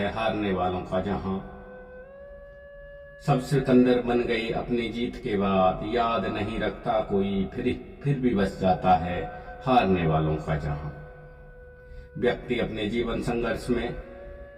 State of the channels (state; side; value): identical; both; correlation 1.00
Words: हारने वालों का जहां। सब सिकंदर बन गई अपनी जीत के बाद, याद नहीं रखता कोई, फिर भी बस जाता है हारने वालों का जहां। व्यक्ति अपने जीवन संघर्ष में